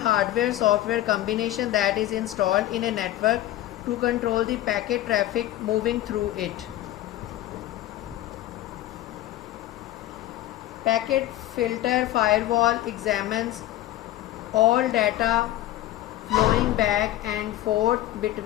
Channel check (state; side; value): quieter; right; 14.3 dB